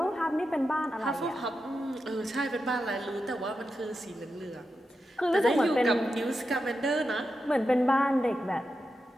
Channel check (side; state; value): both; normal; correlation 0.89